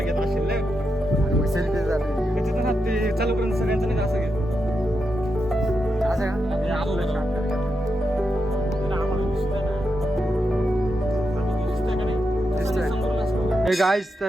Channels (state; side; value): normal; both; correlation 0.86